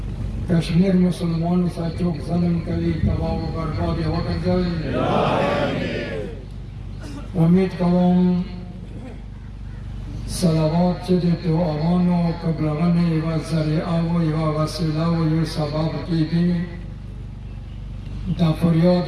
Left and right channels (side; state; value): both; identical; correlation 1.00